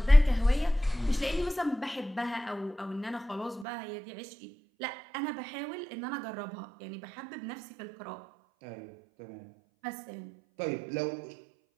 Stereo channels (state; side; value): drops out; left; at 3.7 s